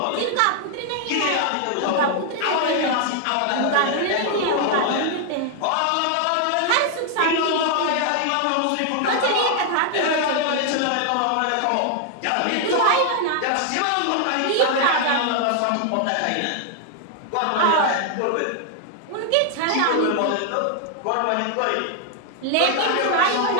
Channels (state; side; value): different; both; correlation 0.00